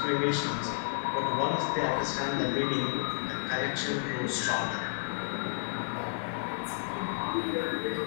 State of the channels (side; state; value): right; silent; digital silence